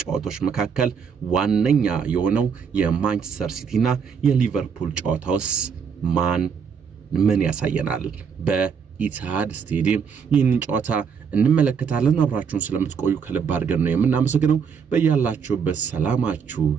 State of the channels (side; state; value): left; quieter; 6.5 dB